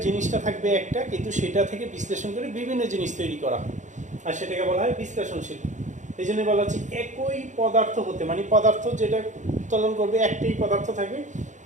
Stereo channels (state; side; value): late; left; 0.35 ms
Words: জিনিসটা থাকবে একটা, কিন্তু সেটা থেকে বিশ্লেষণ করে বিভিন্ন জিনিস তৈরি করা হয়, আর সেটাকে বলা হয় বিশ্লেষণশীল। এই জন্য বলা হচ্ছে একই পদার্থ হতে, মানে পদার্থ যেটা উৎপাদন করবে একটাই পদার্থ থাকবে,